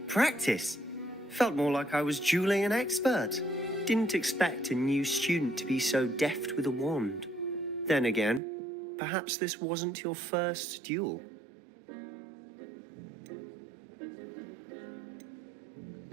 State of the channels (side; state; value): left; drops out; at 8.4 s